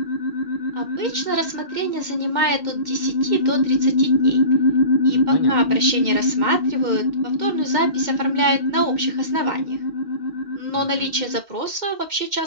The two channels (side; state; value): left; late; 2.1 ms